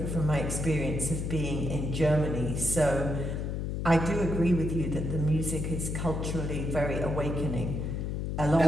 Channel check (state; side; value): noise; left; hum, 2 dB below the sound